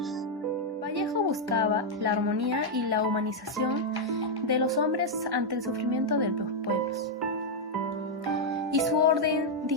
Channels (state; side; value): normal; both; correlation -0.01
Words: Vallejo buscaba la armonía y la humanización de los hombres ante el sufrimiento de los pueblos. Y su orden